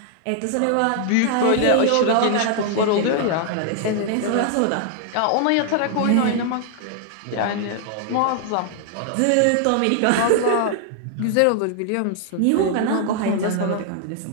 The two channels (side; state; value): both; different; correlation 0.00